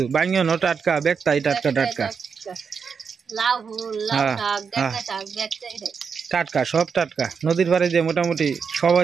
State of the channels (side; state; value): left; quieter; 6.0 dB